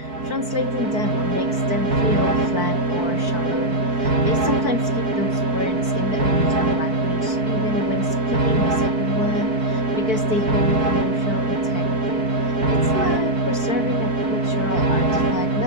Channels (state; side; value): late; left; 4.6 ms